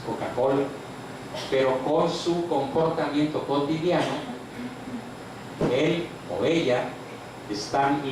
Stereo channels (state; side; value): identical; both; correlation 1.00